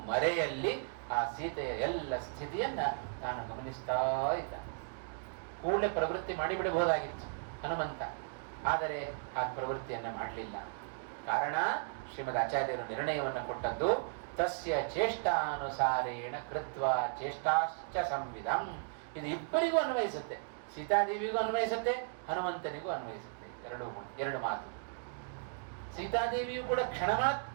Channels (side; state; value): left; silent; digital silence